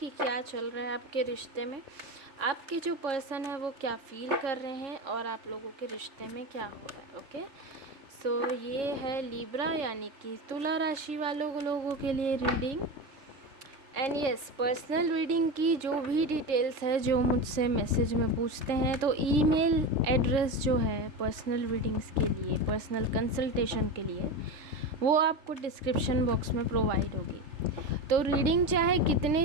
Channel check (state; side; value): late; left; 3.4 ms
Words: क्या चल रहा है आपके रिश्ते में, आपके जो पर्सन है वो क्या फील कर रहे हैं और आप लोगों के रिश्ते में क्या हो रहा है। ओके, सो ये है लिब्रा यानी कि तुला राशि वालों लोगों के लिए reading. And yes, personal reading की जो भी डिटेल्स है जो मुझसे मैसेज में पूछते हैं तो ईमेल एड्रेस जो है पर्सनल रीडिंग्स के लिए, पर्सनल कंसल्टेशन के लिए, वो आपको डिस्क्रिप्शन बॉक्स में प्रोवाइड होगी। तो रीडिंग चाहे